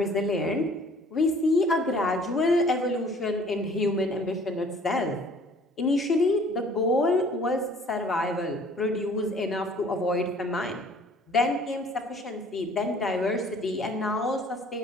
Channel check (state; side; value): normal; both; correlation 0.54